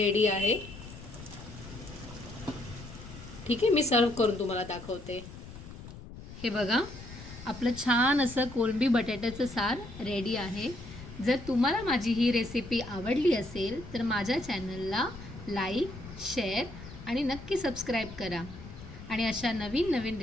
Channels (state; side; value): noise; left; rumble, 14 dB below the sound